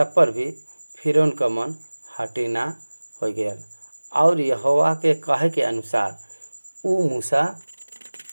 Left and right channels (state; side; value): inverted; both; correlation -1.00